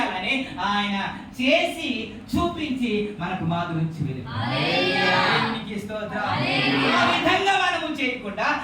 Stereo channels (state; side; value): identical; both; correlation 1.00